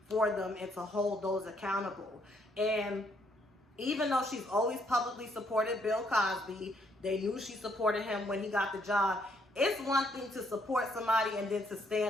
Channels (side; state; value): both; normal; correlation 0.71